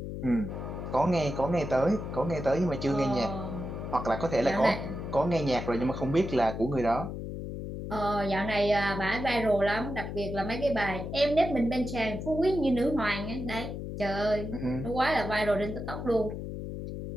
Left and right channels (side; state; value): left; noise; hum, 6 dB below the sound